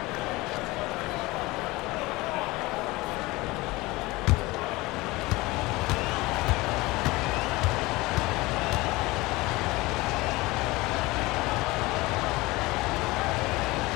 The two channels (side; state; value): right; quieter; 21.3 dB